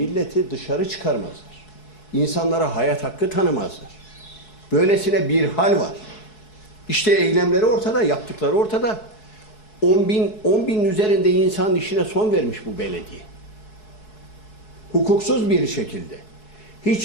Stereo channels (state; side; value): late; right; 4.7 ms